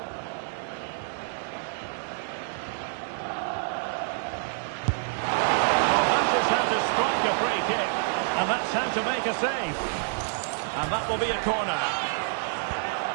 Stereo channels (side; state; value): left; silent; 60 dB below the other